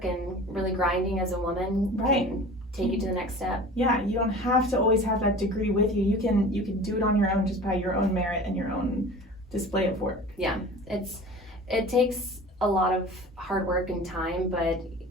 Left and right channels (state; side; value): normal; both; correlation 0.40